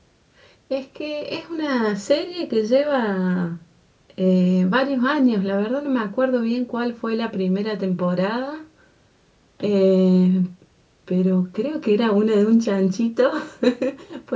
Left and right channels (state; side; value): identical; both; correlation 1.00